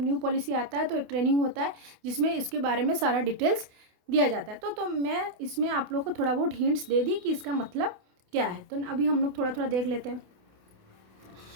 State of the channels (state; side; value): late; left; 28 ms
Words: न्यू पॉलिसी आता है तो एक ट्रेनिंग होता है जिसमें इसके बारे में सारा डिटेल्स दिया जाता है। तो मैं इसमें आप लोग को थोड़ा बहुत हिंट्स दे दी कि इसका मतलब क्या है। तो अभी हम लोग थोड़ा थोड़ा देख लेते हैं।